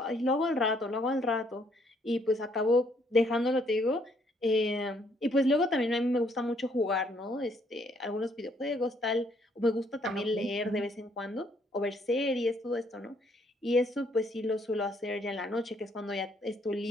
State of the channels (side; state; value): both; normal; correlation 0.68